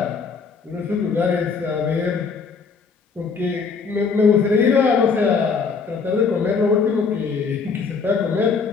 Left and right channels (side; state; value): right; quieter; 5.3 dB